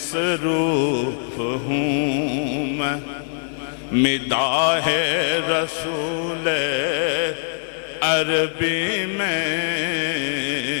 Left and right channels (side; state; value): right; silent; digital silence